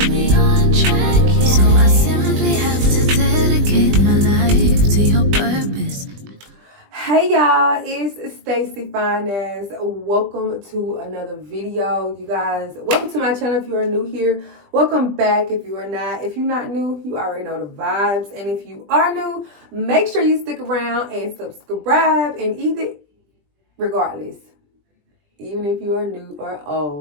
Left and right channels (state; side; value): late; left; 20 ms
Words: So I simply have to dedicate my life to your purpose. Hey y'all, it's Stacy Finance. Welcome to another video, you guys. Welcome to my channel if you are new here. Welcome back if you are not. If you're not new, you already know the vibes. And if you are new, make sure you stick around and subscribe. And regardless, even if you are new or